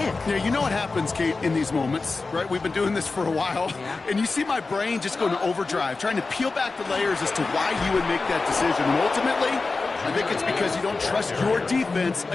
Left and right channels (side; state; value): right; quieter; 3.9 dB